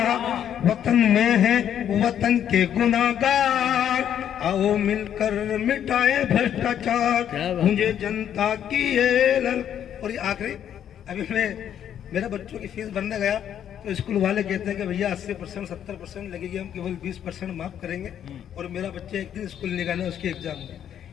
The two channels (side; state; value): right; quieter; 9.7 dB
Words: वतन में है वतन के गुनाहगार। आओ मिलकर मिटाए भ्रष्टाचार, मुझे जनता की ये लल। और ये आखिरी, अभी मैं मेरे बच्चों की फीस भरने गया तो स्कूल वाले कहते हैं कि भैया 80% 70% लगेगी, हम केवल 20% माफ करेंगे। और मेरा बच्चा एक दिन स्कूल नहीं गया उसके एग्जाम में,